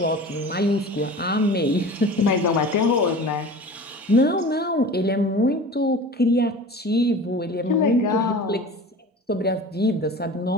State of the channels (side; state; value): both; normal; correlation 0.38